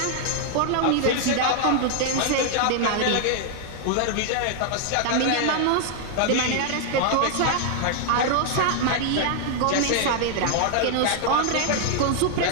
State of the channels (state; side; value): different; both; correlation 0.00